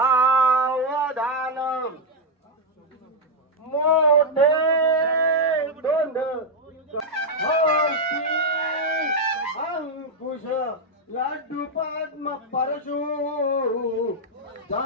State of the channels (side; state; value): both; normal; correlation 0.01